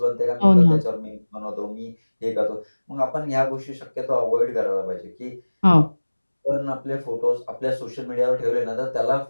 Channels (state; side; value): inverted; both; correlation -1.00